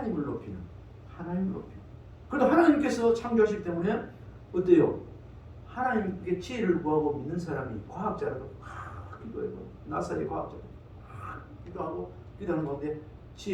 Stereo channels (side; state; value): both; identical; correlation 1.00